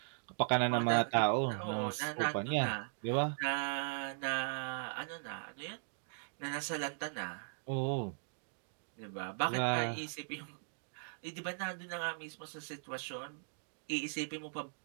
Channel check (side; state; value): left; silent; digital silence